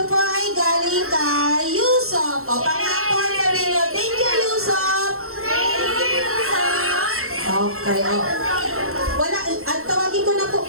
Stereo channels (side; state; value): left; late; 0.62 ms